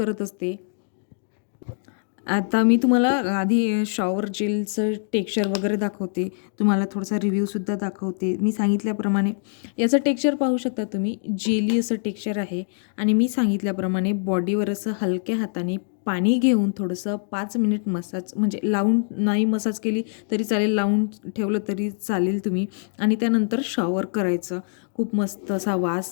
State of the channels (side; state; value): right; silent; digital silence